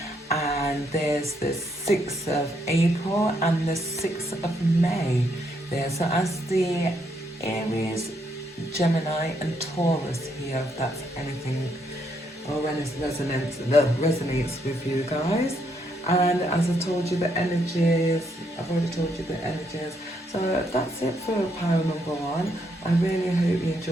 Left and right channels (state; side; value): normal; both; correlation 0.75